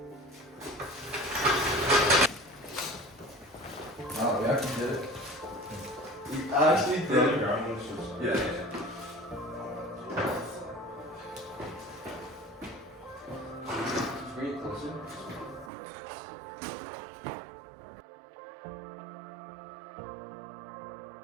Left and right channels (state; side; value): drops out; left; at 15.7 s